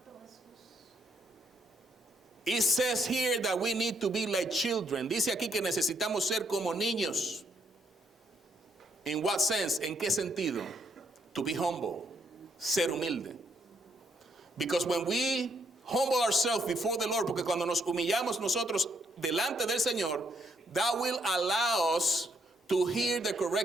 It says here that we need to be like children. Dice aquí que necesitamos ser como niños. In what sense? ¿En qué sentido? To be humble. Ser humilde. Because when we humble ourselves before the Lord, porque cuando nos humillamos nosotros delante del Señor, that will allow us to hear the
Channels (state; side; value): normal; both; correlation 0.73